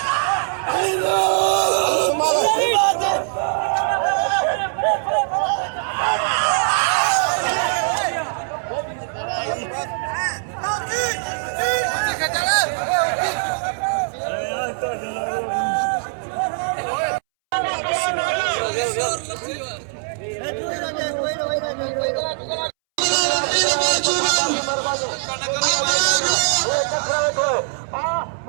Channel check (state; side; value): silent; left; 65 dB below the other